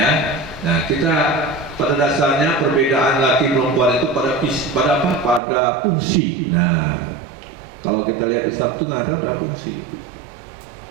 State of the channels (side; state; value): left; drops out; at 5.4 s